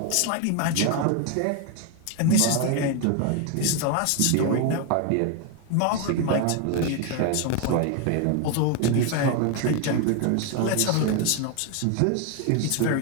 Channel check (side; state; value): both; different; correlation 0.01